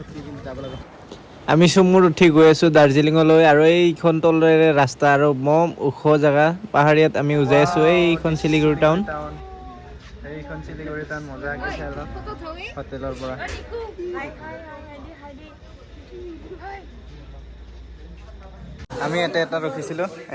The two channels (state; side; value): identical; both; correlation 1.00